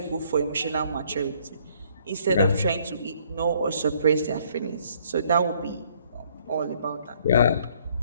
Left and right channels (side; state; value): both; inverted; correlation -0.64